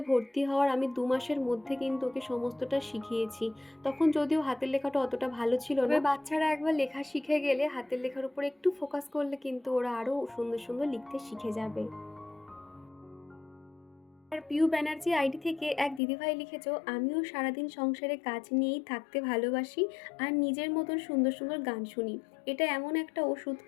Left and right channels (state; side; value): drops out; right; at 16.0 s